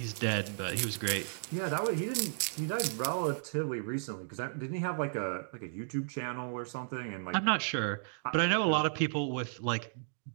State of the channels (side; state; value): left; silent; digital silence